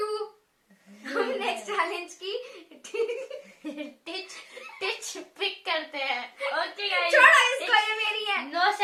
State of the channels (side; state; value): both; identical; correlation 1.00